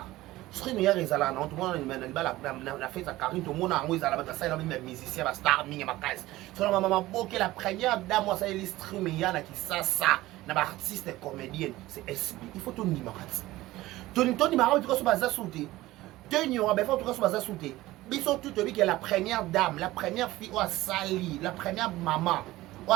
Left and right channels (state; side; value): quieter; left; 17.4 dB